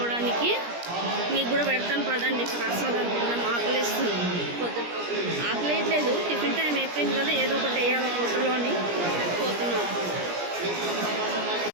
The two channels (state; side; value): late; left; 17 ms